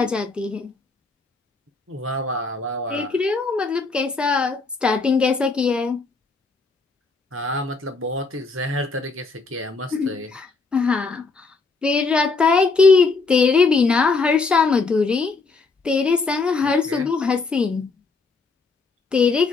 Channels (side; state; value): right; quieter; 4.2 dB